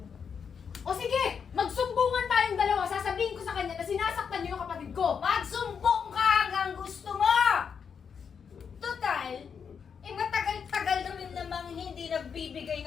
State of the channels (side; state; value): right; quieter; 6.7 dB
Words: O sige, magsumbungan tayong dalawa. Sasabihin ko sa kanya na sinasaktan nyo yung kapatid ko. Magsumbong ka hanggang gusto mo! Total, matagal-tagal na rin namang hindi nagbibigay